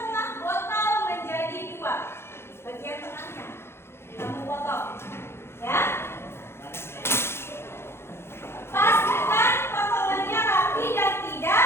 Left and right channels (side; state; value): right; late; 0.12 ms